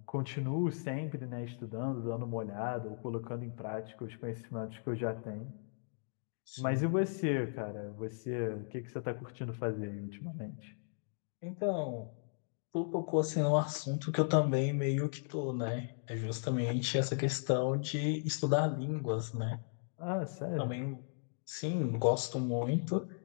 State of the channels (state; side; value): silent; right; digital silence